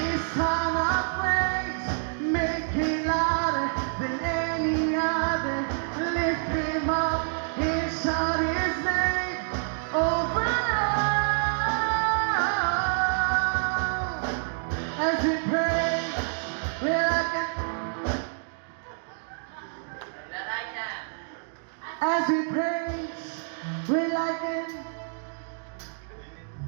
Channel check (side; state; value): left; silent; digital silence